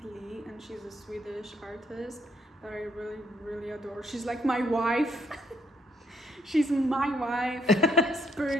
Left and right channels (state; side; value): normal; both; correlation 0.70